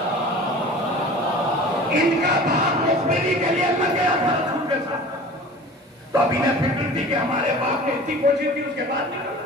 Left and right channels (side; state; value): both; normal; correlation 0.40